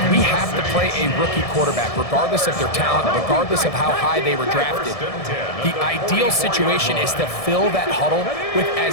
we have to play a rookie quarterback, regardless of their talent, regardless of how high they were drafted, the ideal situation is to fill that huddle with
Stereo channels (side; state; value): right; late; 1.7 ms